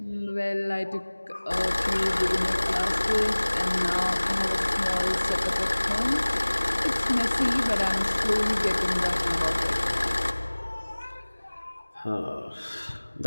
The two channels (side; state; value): both; inverted; correlation -1.00